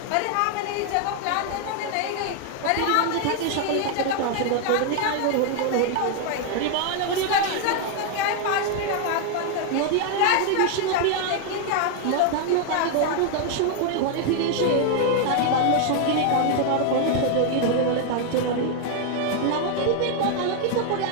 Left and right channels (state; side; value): different; both; correlation 0.00